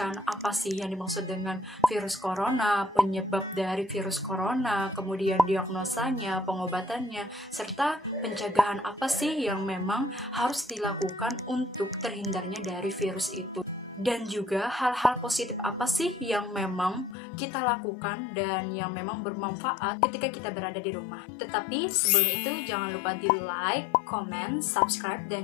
apa sih yang dimaksud dengan virus corona, penyebab dari virus corona, kemudian diagnosanya, pengobatannya, serta pencegahan apa sih yang memang harus dilakukan untuk terhindarnya dari virus itu. Dan juga hal-hal positif apa sih yang memang kita lakukan dan yang memang bermanfaat ketika kita berada di rumah. Tetapi sebelum itu jangan lupa di like, comment, subscribe,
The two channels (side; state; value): right; drops out; at 17.2 s